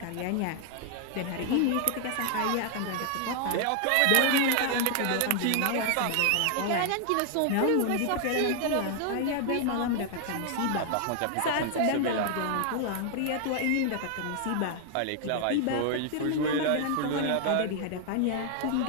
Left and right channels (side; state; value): both; different; correlation 0.00